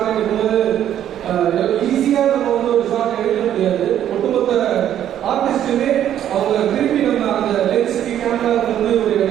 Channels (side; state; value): left; quieter; 10.8 dB